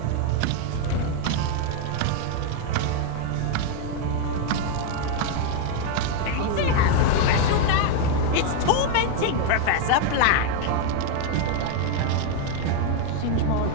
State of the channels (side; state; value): both; different; correlation 0.00